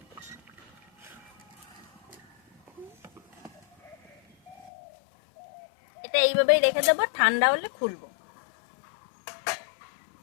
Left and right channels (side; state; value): right; drops out; at 4.7 s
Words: এটা এইভাবেই রেখে দেবো, ঠান্ডা হলে খুলবো।